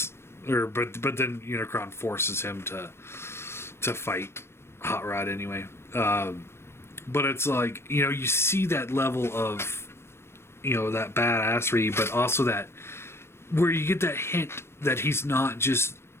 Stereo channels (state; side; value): late; right; 0.12 ms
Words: but then Unicron forces him to fight Hot Rod anyway. But it's like, you see that level of, that badassery, but also that, where you get that hint that he's not just